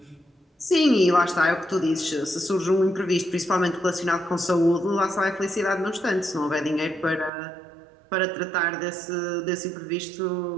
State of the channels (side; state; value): left; drops out; at 7.3 s